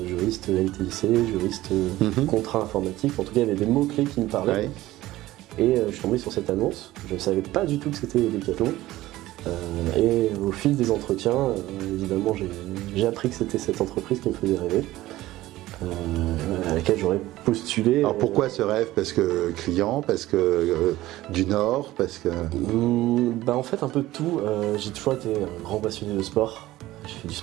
juristes LTIC, juristes contrat informatique. En tout cas, il y avait des mots-clés qui me parlaient. Ouais. Et je suis tombé sur cette annonce. Je ne savais pas du tout que c'était Decathlon. Et au fil des entretiens, évidemment, j'ai appris que c'était cette entreprise qui me faisait rêver. À laquelle j'aurais postulé. Alors pourquoi ce rêve? Parce que client, parce que du Nord, parce que... En fait un peu de tout. J'ai toujours été un grand passionné de sport. J'ai fait du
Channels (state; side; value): quieter; left; 16.4 dB